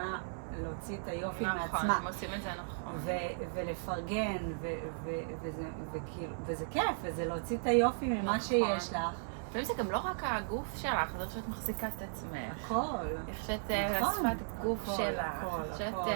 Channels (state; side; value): silent; left; 54 dB below the other